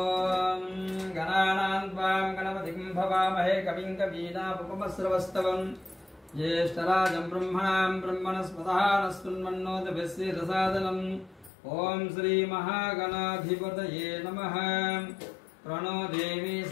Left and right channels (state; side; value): drops out; right; at 11.5 s